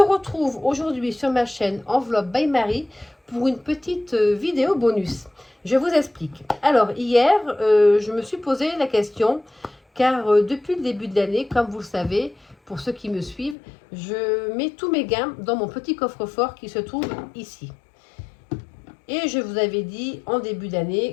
aujourd'hui sur ma chaîne Enveloppe by Marie pour une petite vidéo bonus. Je vous explique. Alors hier, je me suis posé la question car depuis le début de l'année, comme vous le savez, pour ceux qui me suivent, je mets tous mes gains dans mon petit coffre-fort qui se trouve ici. Et je vous avais dit en début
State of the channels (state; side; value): drops out; right; at 13.6 s